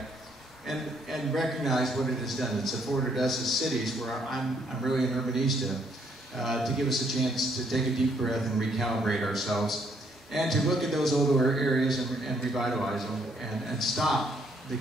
and recognize what it has done. It's afforded us as cities, where I'm really an urbanista, to give us a chance to take a deep breath and recalibrate ourselves, and to look at those older areas and revitalize them, and stop the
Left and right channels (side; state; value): both; normal; correlation 0.69